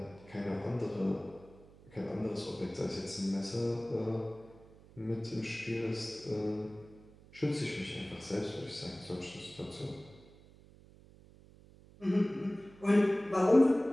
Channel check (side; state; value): right; noise; hum, 23 dB below the sound